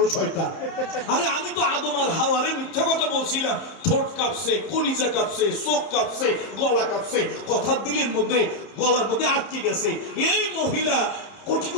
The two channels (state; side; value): late; right; 30 ms